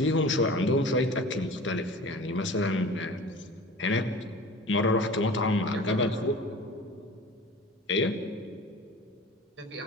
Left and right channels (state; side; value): normal; both; correlation 0.39